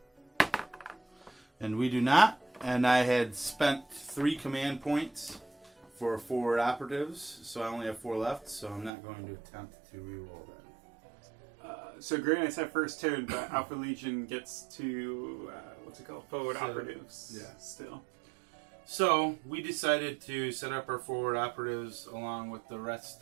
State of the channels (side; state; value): left; drops out; at 8.9 s